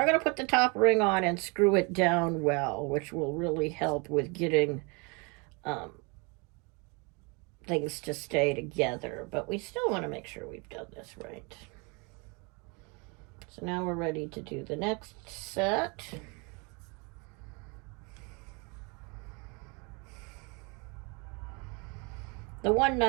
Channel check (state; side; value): quieter; left; 30.9 dB